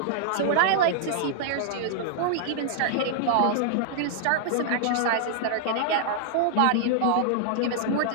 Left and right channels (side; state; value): both; different; correlation -0.01